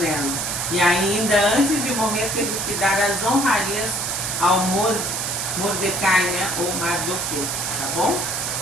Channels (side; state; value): right; noise; hiss, 2 dB below the sound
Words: E ainda antes de morrer teve que dar as honrarias ao Mordecai, né, ou Mardoqueu, tá bom?